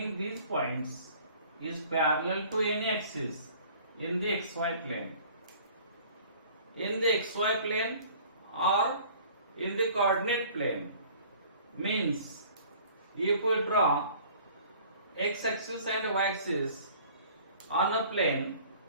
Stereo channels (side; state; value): both; inverted; correlation -0.51